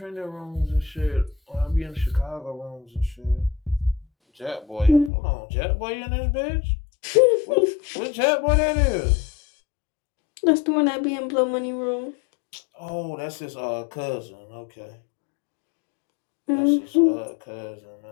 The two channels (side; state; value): right; drops out; at 5.1 s